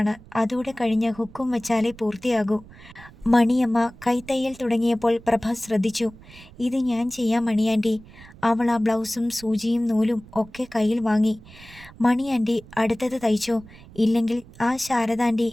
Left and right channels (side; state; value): right; noise; rumble, 21 dB below the sound